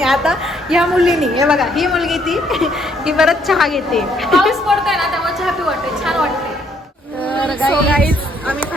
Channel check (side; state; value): both; normal; correlation 0.68